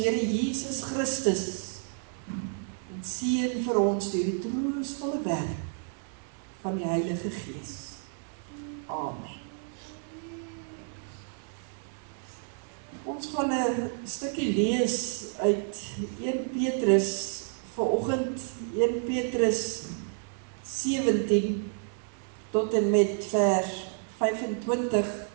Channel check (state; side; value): silent; left; 58 dB below the other